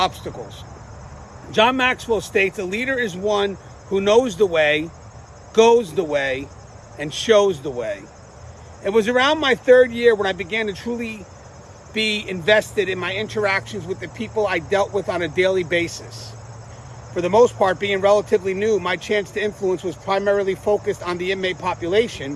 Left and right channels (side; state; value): both; identical; correlation 1.00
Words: John Maxwell states, a leader is one who knows the way, goes the way, and shows the way. It was around my third year when I began to truly be invested in my interactions with the people I dealt with on a daily basis. For the most part, being relatively new, my chance to influence was primarily focused on the inmate